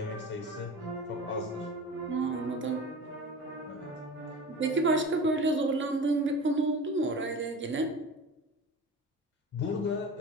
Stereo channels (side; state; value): both; normal; correlation 0.35